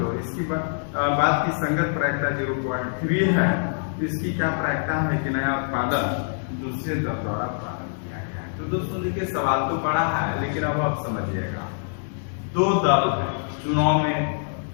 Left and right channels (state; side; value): silent; right; digital silence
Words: इसकी बाद की संगत प्रायिकता 0.3 है। इसकी क्या प्रायिकता है कि नया उत्पादन दूसरे दल द्वारा प्रारंभ किया गया है। तो दोस्तों देखिए सवाल तो पड़ा है, लेकिन अब आप समझिएगा। दो दल है, चुनाव में